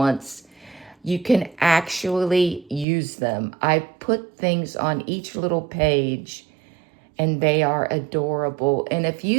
You can actually use them. I put things on each little page and they are adorable. And if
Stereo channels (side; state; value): left; drops out; at 2.9 s